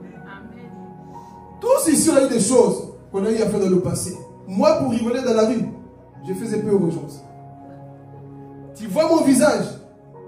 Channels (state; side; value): identical; both; correlation 1.00